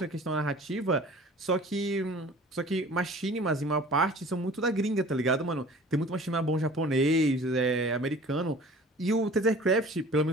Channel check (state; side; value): normal; both; correlation 0.46